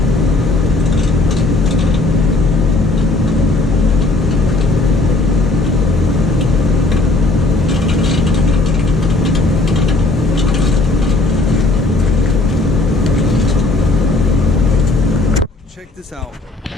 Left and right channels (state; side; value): quieter; right; 3.1 dB